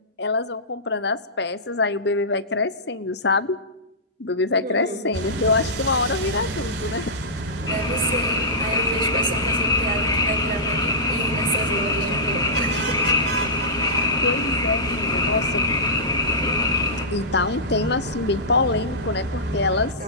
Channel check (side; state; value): both; normal; correlation -0.16